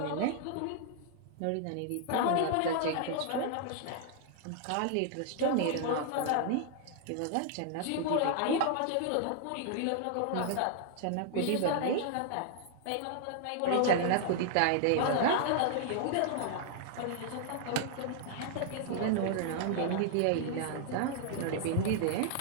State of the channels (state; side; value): different; both; correlation 0.00